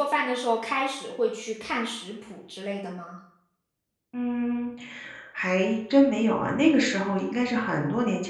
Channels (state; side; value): identical; both; correlation 1.00